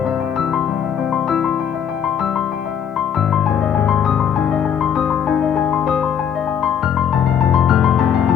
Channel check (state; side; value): quieter; right; 8.4 dB